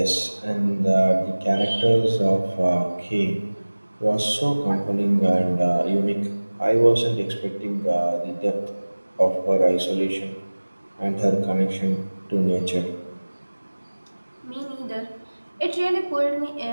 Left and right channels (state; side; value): inverted; both; correlation -1.00